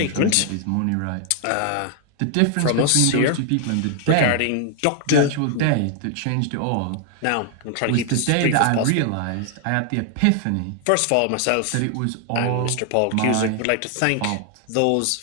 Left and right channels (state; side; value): different; both; correlation 0.00